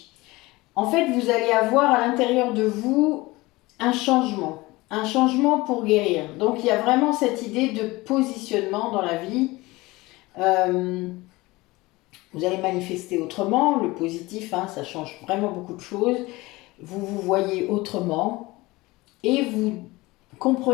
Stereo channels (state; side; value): quieter; right; 21.1 dB